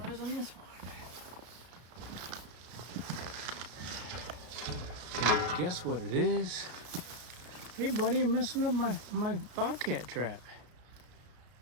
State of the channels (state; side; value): late; left; 33 ms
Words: on this one. Can you guess what it is? Hey buddy, you're messing up my bobcat trap.